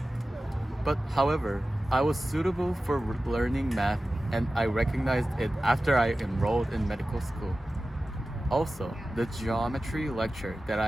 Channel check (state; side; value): normal; both; correlation 0.95